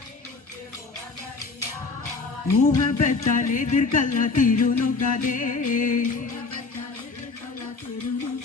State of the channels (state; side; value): quieter; right; 4.1 dB